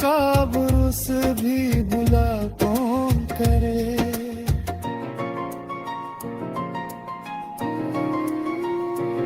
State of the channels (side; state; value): both; identical; correlation 1.00